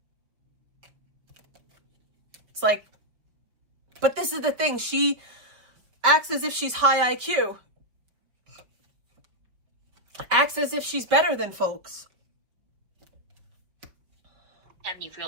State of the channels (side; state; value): left; late; 4.9 ms